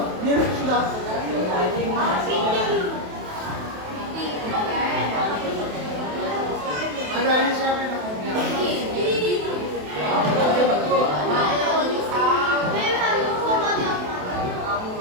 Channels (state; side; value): late; left; 28 ms